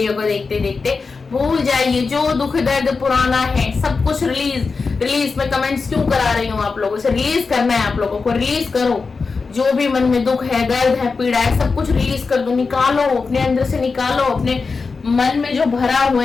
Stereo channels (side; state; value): right; quieter; 4.6 dB